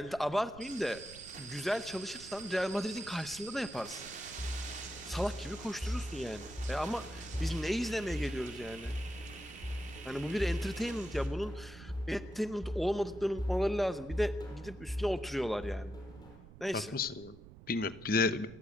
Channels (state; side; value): noise; right; rumble, 18 dB below the sound